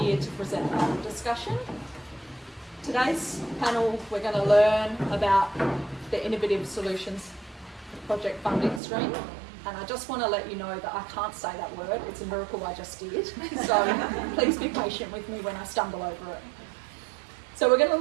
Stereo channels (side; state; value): left; drops out; at 8.8 s